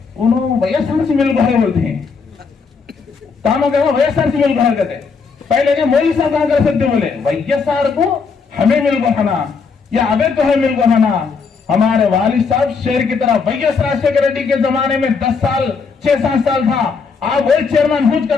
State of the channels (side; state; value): right; quieter; 5.2 dB